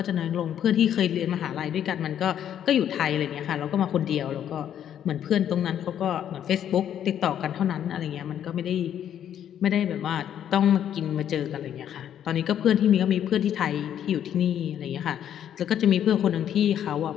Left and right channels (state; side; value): quieter; right; 9.9 dB